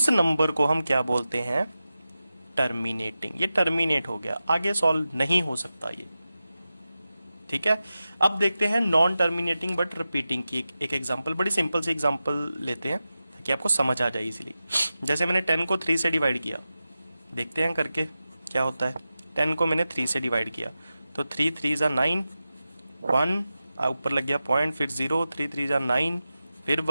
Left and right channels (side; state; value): both; inverted; correlation -0.93